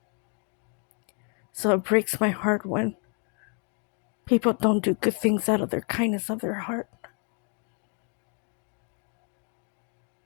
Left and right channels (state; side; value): quieter; right; 39.3 dB